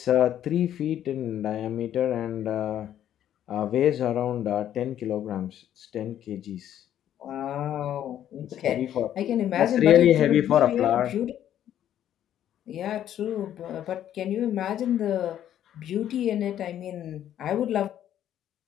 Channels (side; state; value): right; quieter; 11.0 dB